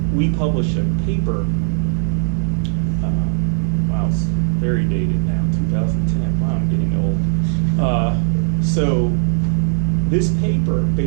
we published a paper. Wow, it's very dated now, 2010. Wow, I'm getting old. So this paper,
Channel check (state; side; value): silent; left; 67 dB below the other